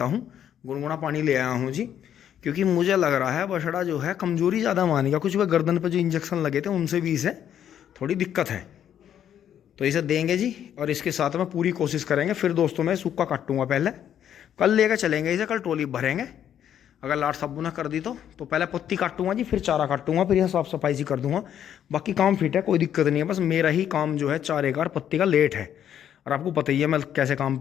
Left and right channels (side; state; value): right; quieter; 9.8 dB